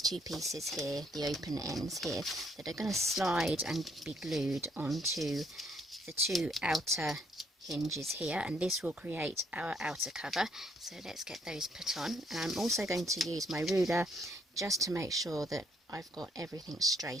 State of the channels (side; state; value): both; normal; correlation 0.69